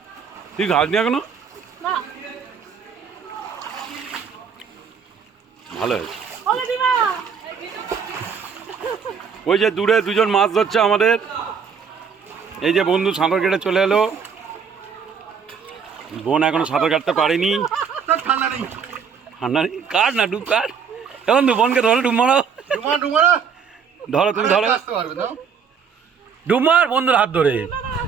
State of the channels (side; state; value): left; quieter; 6.5 dB